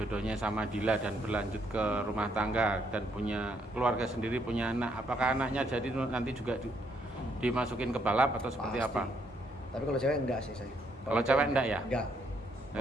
sama Dila dan berlanjut ke rumah tangga dan punya keluarga sendiri, punya anak, apakah anaknya jadi nanti juga dimasukin ke balap atau seperti Pasti. apa? Tapi kalau cewek enggak sih saya. Kalau cewek enggak ya? Enggak.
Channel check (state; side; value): normal; both; correlation 0.72